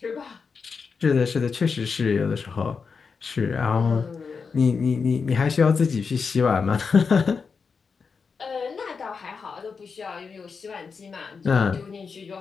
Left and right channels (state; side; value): quieter; right; 5.3 dB